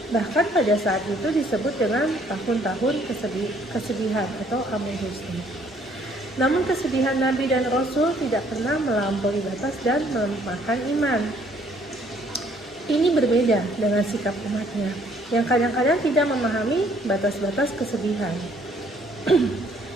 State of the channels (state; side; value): normal; both; correlation 0.63